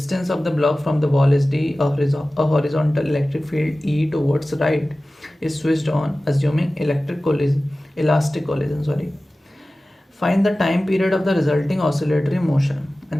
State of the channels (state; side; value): normal; both; correlation 0.96